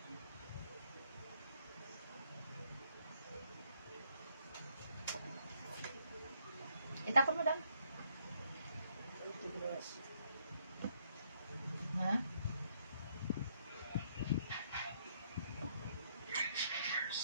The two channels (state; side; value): inverted; both; correlation -0.71